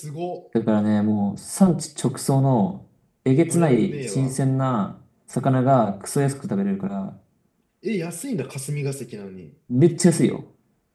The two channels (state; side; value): identical; both; correlation 1.00